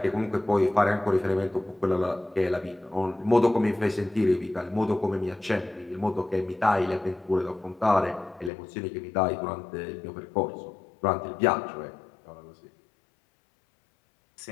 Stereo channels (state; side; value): drops out; right; at 8.5 s